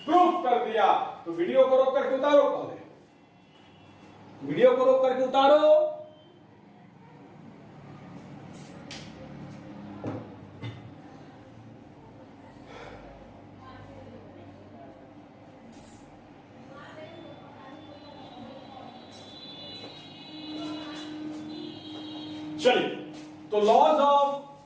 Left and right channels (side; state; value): both; identical; correlation 1.00